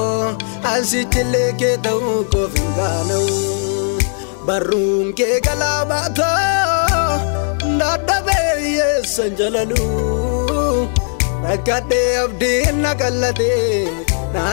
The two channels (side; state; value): right; silent; 63 dB below the other